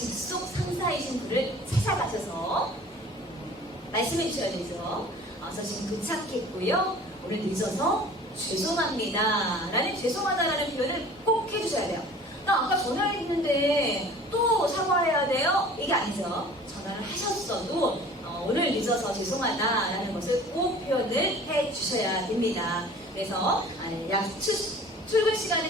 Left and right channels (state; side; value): normal; both; correlation 0.46